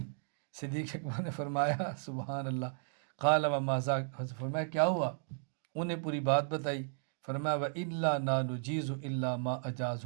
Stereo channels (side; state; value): left; silent; digital silence